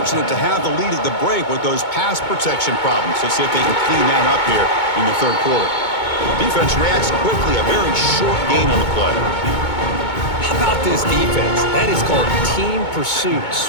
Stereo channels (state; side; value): late; right; 2.2 ms